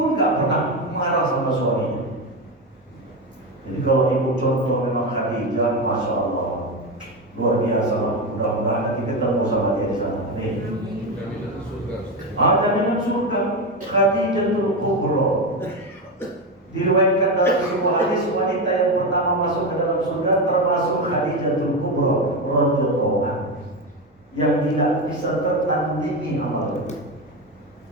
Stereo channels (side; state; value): both; normal; correlation 0.15